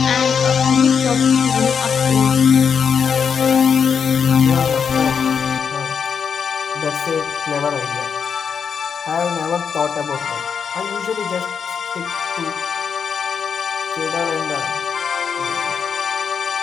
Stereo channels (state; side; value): quieter; right; 6.7 dB